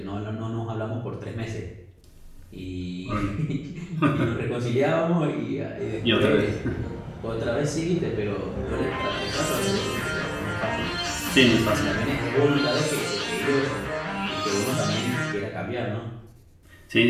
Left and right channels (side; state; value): both; identical; correlation 1.00